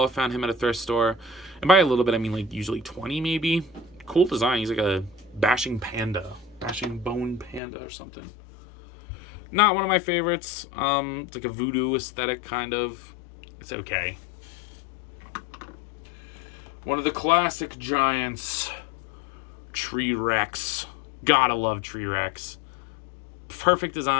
I found him at a thrift store. And by a little bit, I mean like usually 20 maybe. Cool design. He's like a bashing panda. Bashing bone panda or something. Not one of my favorites. It's like a voodoo aesthetic kind of. It's okay. One of the classic giants. Tree Rex. Gotta love Tree Rex. Perfect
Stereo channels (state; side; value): drops out; right; at 7.6 s